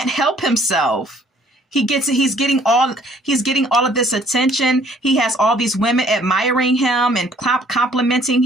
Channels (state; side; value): normal; both; correlation 0.60